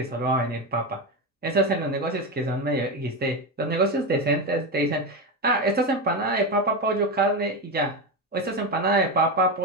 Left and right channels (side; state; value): both; normal; correlation 0.15